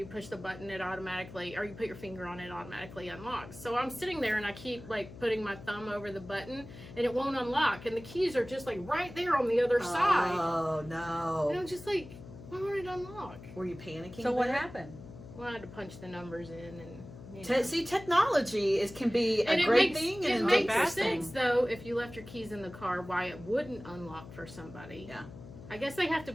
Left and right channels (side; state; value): left; noise; hum, 15 dB below the sound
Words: push the button, it automatically, or you put your finger on it, automatically unlocks. So I'm sitting there and I keep like putting my thumb over the button and it won't unlock, and the keys are just like right there on the other side. Oh And no! I'm just like, why won't it unlock? Were you panicking? So what there? happened? Well, I had to punch the numbers in and. See, technology can be a And great thing it and a makes bad sense thing. though if you left your keys in the car, why it wouldn't unlock for somebody. Yeah. I guess they have to